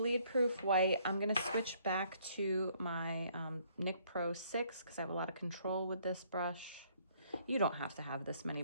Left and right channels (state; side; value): inverted; both; correlation -0.65